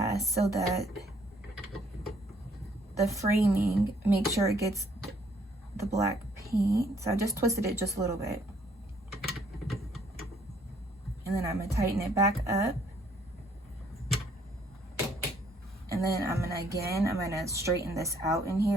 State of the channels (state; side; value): normal; both; correlation 0.65